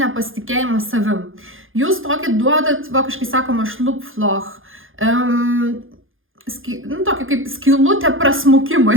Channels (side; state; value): left; late; 0.59 ms